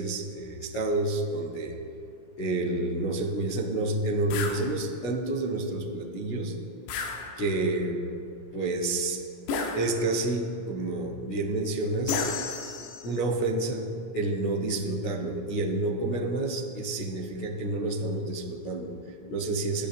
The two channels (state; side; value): late; right; 17 ms